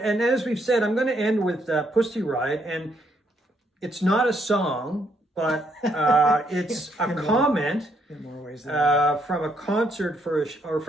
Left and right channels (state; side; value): normal; both; correlation 0.73